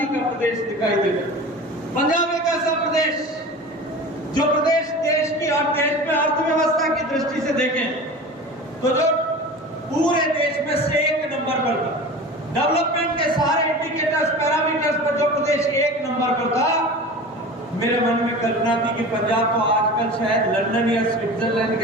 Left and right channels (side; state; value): both; normal; correlation 0.35